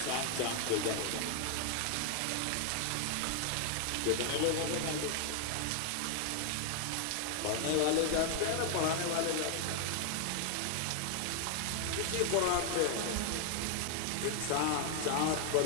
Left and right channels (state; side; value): different; both; correlation 0.00